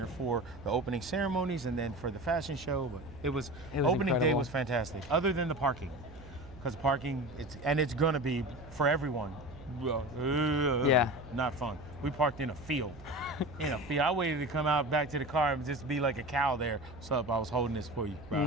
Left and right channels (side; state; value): right; noise; hum, 18 dB below the sound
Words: for the opening ceremonies and then for the fashion show. But it was opening incredible. Day was fantastic, other than the parking, because parking it's gonna be for everyone. Not fun. We parked in a field. I waited to come out back to the car and just be like a cow there. What's up? I was holding this for you, bro.